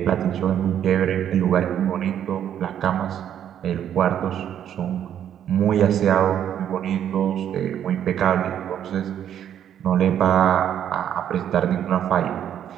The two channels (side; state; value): left; quieter; 9.9 dB